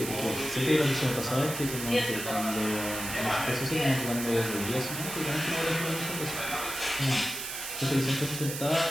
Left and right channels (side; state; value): right; noise; hiss, 6 dB below the sound